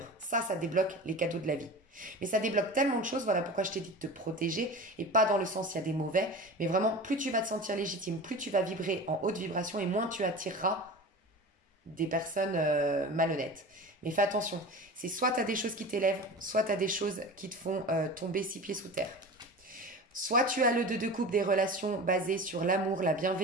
Ça débloque les cadeaux de la vie. Mais ça débloque tellement de choses, voilà pourquoi je t'ai dit de te protéger, et pas dans le sens il y a des mauvais, mais vraiment plus tu vas te sentir légitime, plus tu vas vibrer en haute vibration et moins tu attireras des personnes malhonnêtes. Mais fais attention, c'est soit tu as des choses qui t'élèvent, soit tu as des choses qui te font tomber 6 pieds sous terre. Soit tu as le 2 de coupe des relations basées sur l'amour, la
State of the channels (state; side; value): normal; both; correlation 0.33